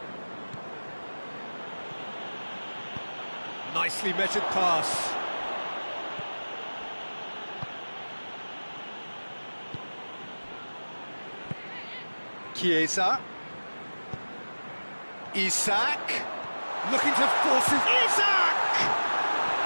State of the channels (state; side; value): inverted; both; correlation -1.00